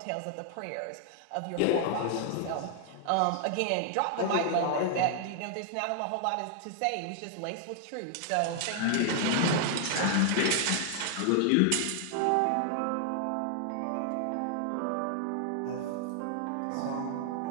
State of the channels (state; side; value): different; both; correlation 0.00